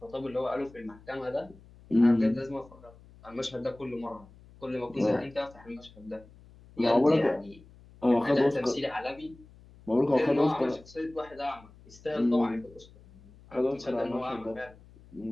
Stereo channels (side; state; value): left; noise; hum, 23 dB below the sound